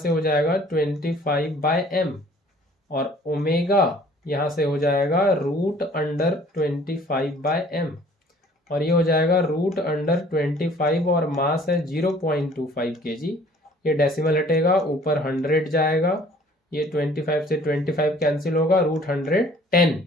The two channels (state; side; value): normal; both; correlation 0.54